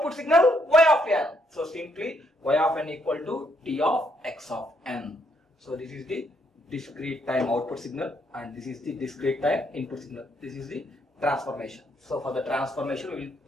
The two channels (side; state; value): both; normal; correlation 0.74